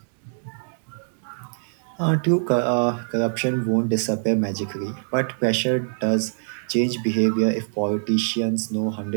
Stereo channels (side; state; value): left; silent; 63 dB below the other